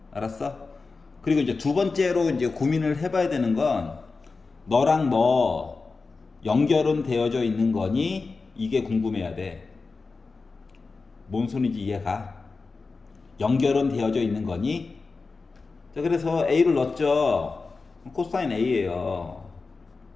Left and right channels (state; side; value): quieter; right; 4.1 dB